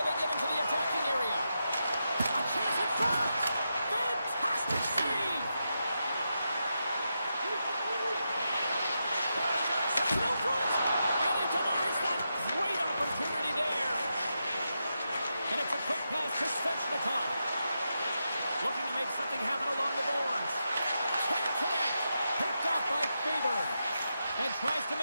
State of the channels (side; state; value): both; inverted; correlation -0.86